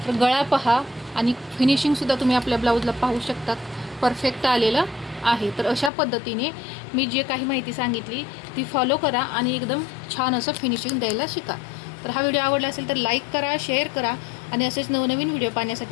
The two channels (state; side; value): drops out; right; at 5.9 s